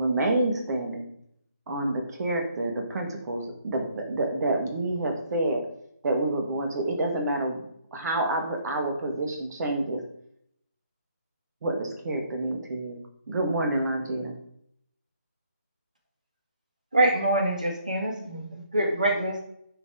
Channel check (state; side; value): inverted; both; correlation -0.66